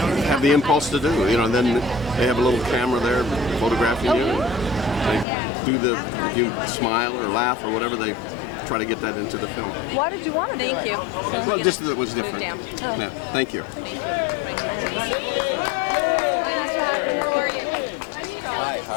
have the impulse to do. You know, and then they have a little camera there photographing you. They you smile or laugh or whatever. They try to get that into the film. Why did you want to do it? Thank you. Well, just that it was different. Down. Yeah, thank you. Hi, how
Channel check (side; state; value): right; drops out; at 5.2 s